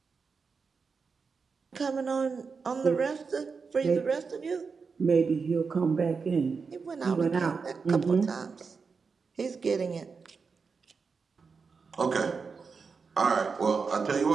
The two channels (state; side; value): quieter; left; 5.1 dB